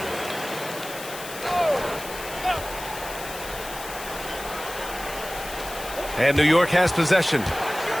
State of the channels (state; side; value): noise; left; hiss, 12 dB below the sound